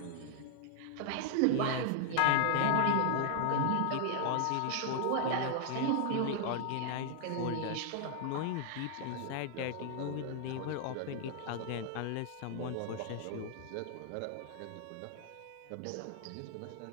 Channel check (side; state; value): both; different; correlation 0.00